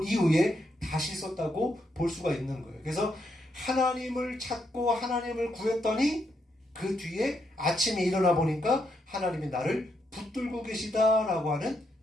이후에 다시 썼다고 볼 수가 있는 거예요. 그래서 하나님을 찾고 하나님을 구했더니 그 뒤에 아침에 일어나 보니까 하나님이 나를 붙들고 계시다라고 하는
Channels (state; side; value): normal; both; correlation 0.79